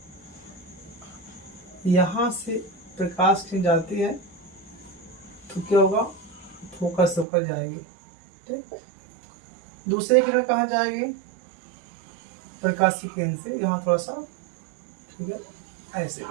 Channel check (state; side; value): drops out; left; at 7.2 s